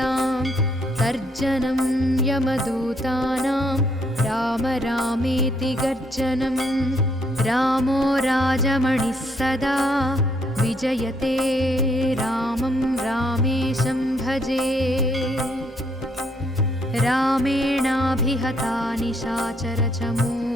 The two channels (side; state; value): both; normal; correlation 0.71